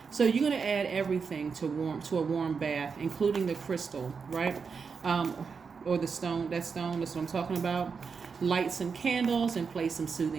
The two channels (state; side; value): quieter; left; 5.5 dB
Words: so you're gonna add everything to a warm bath, including the crystal, right? Or the stone. That's what I'm talking about. Light some candles and play some